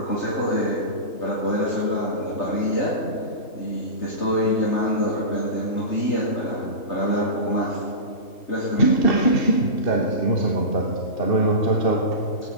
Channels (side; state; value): right; late; 3.3 ms